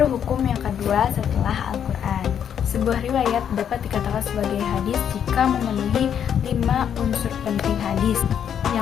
hukum yang kedua setelah Al-Quran. Sebuah riwayat dapat dikatakan sebagai hadis jika memenuhi 5 unsur penting hadis.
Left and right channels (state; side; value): quieter; right; 8.7 dB